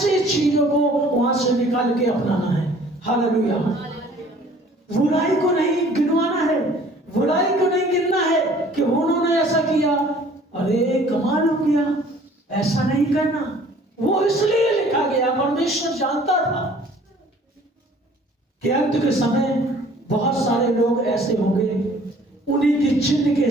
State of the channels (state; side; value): normal; both; correlation 0.53